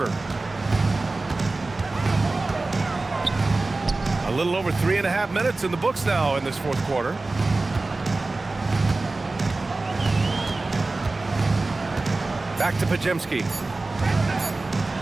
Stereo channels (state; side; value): quieter; left; 3.3 dB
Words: A little over 3.5 minutes in the books now in this 4th quarter. Back to Podziemski.